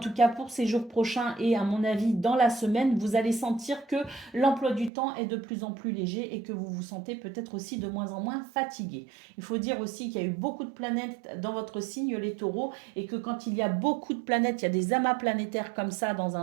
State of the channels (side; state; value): left; drops out; at 4.9 s